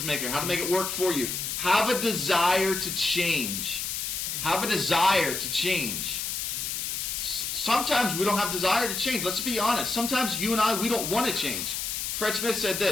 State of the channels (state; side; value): noise; left; hiss, 3 dB below the sound